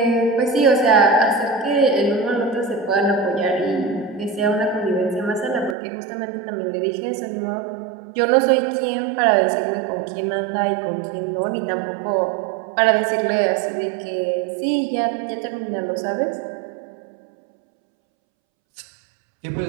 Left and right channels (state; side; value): drops out; left; at 5.8 s